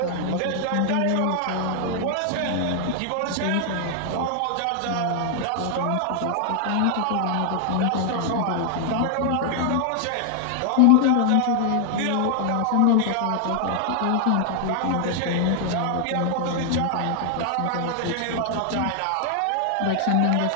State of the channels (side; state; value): both; different; correlation 0.00